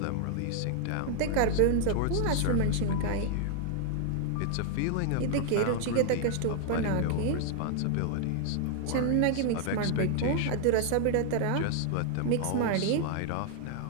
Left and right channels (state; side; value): different; both; correlation 0.00